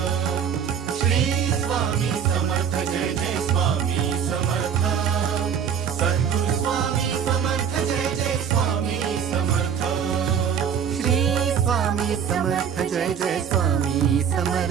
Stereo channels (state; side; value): quieter; left; 7.7 dB